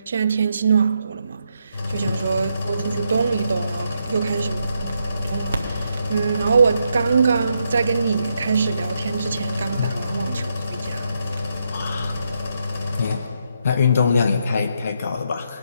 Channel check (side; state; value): both; inverted; correlation -0.80